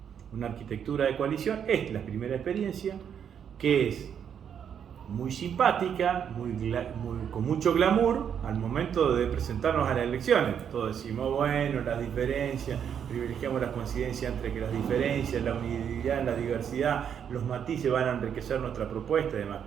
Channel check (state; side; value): quieter; left; 8.2 dB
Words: Una arquitectura de coalición es la primera experiencia, que es muy simpática, con mucho glamour al momento de presentarnos a las elecciones. Todos decimos, bueno, las diferencias, privilegiamos las coincidencias entre que las diferencias, la unidad, la diversidad, los matices van a enriquecer nuestra propuesta y demás.